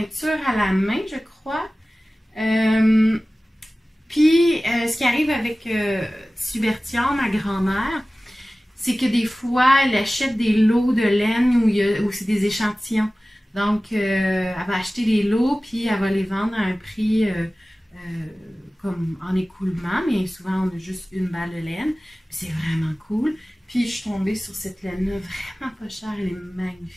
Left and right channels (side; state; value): both; normal; correlation 0.97